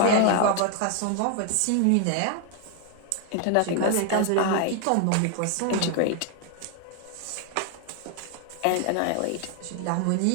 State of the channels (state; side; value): different; both; correlation 0.00